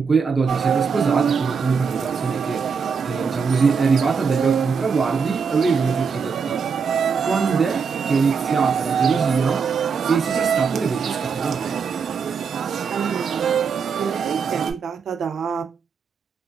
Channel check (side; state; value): left; quieter; 5.8 dB